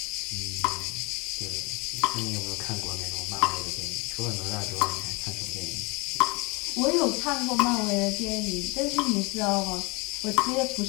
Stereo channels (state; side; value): quieter; right; 27.3 dB